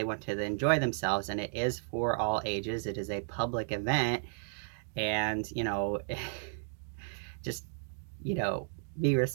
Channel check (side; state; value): left; silent; digital silence